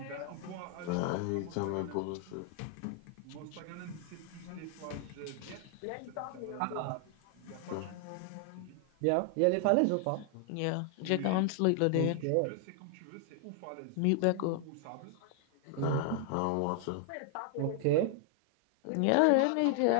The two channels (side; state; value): both; different; correlation 0.00